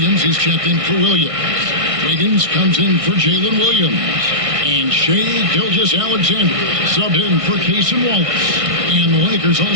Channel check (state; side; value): late; left; 1.6 ms